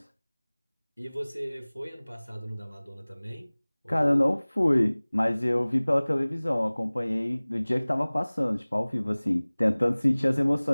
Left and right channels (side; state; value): both; inverted; correlation -1.00